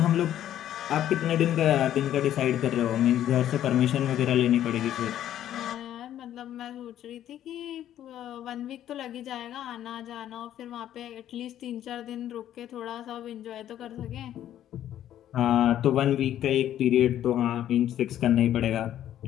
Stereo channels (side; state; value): right; quieter; 11.6 dB